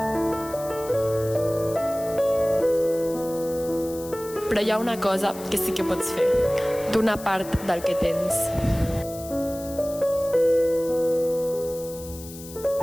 Però hi ha una cosa que sí que pots fer. Donar part del que tens.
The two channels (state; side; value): noise; left; hiss, 16 dB below the sound